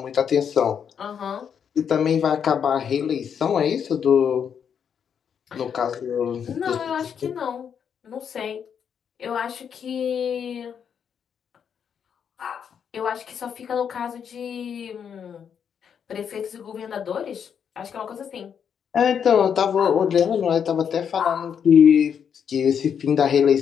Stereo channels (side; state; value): right; quieter; 7.7 dB